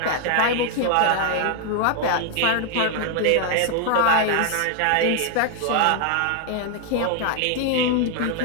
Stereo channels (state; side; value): different; both; correlation 0.01